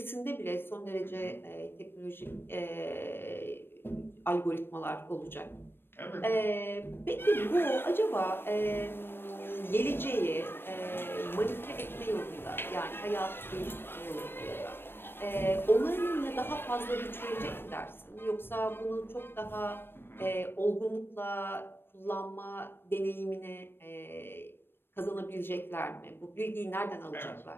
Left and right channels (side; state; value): right; late; 0.10 ms